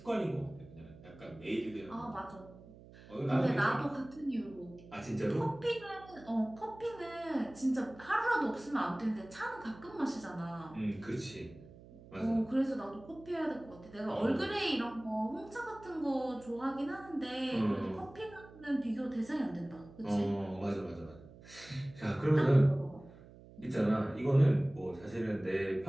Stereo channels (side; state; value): right; noise; hum, 20 dB below the sound